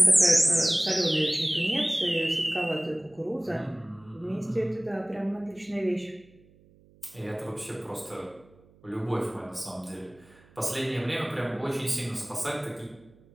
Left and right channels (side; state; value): right; noise; hum, 28 dB below the sound